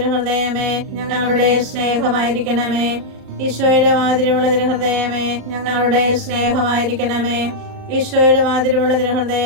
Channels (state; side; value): late; left; 37 ms